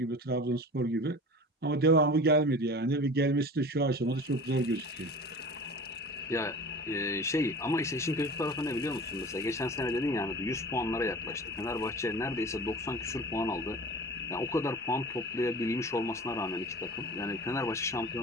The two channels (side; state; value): both; normal; correlation 0.38